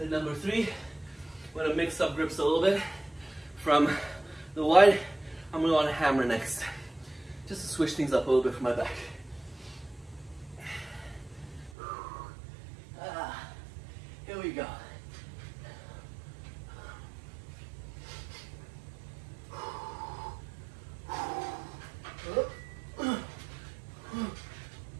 number 3, I'm gonna mix up grips a little bit. From the wide, I'm gonna want to hammer next, just to switch things up a little bit for my back. Here we go.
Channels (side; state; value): left; drops out; at 11.7 s